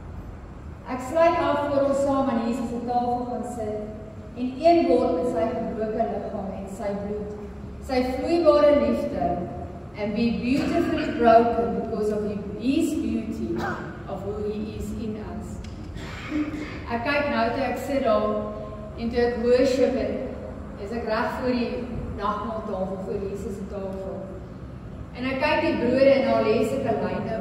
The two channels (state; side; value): identical; both; correlation 1.00